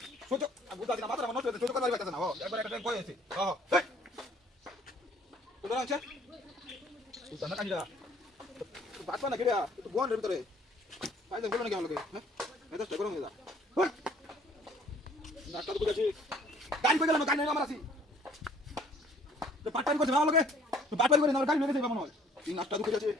সহ্য বুঝা দিনা মাথা নষ্ট হয়ে সহ্য করতে পারতেছ না হ্যাঁ একবার একটা ট্রেন কই আছে হ্যাঁ তো দাঁড়া আছে সুলতান না কাজিরা বাটপা না কেড়া তো গোয়ানের ভিতরে ফাইদা বলো না কেমন লাগে হ্যাঁ মেজাজটা গরম হয়ে যা নাটটা তো বুঝাছি গাড়ি কই গেলাম গাড়ি নেই আমার আছি তো পাটপাড়ি করছে ভালো লাগে তো পাটপাড়ি করে আমার গাড়ি নিয়ে গেছে মনে হয় এই নাটটা তো বুঝাছি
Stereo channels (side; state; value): both; normal; correlation 0.58